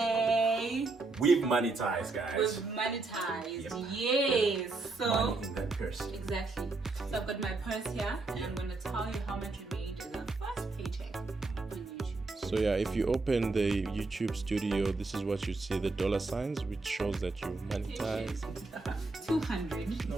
We've monetized, guys. We've monetized. Yes. So Money in that purse. exactly. So I've got my purse here, and I'm gonna tell you how much we made in our first paycheck on YouTube. So yeah, if you open the YouTube studio, this is what you see, the dollar signs, which shows that you've monetized. 200.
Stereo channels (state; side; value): quieter; left; 3.5 dB